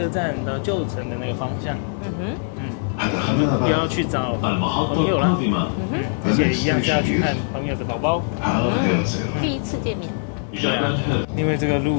站到旧城的那个方向。我们要去找朋友了，而且一样是要去看朋友的宝宝。第一次见面。对啊，因为这个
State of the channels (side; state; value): right; silent; 56 dB below the other